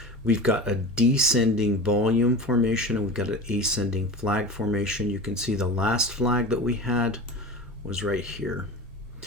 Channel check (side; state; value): both; normal; correlation 0.31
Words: We've got a descending volume formation and we've got an ascending flag formation. You can see the last flag that we had was right here.